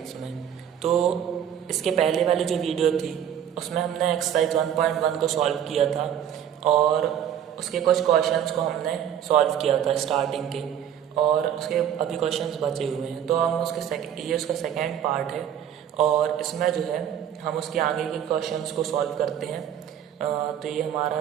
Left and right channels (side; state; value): left; quieter; 9.6 dB